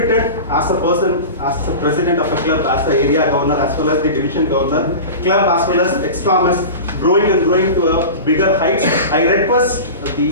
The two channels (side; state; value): both; inverted; correlation -0.30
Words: as a person, as the president of a club, as the area governor, as well as the division governor, club as well as ex-Thomas, growing and growing to a bigger heights. I request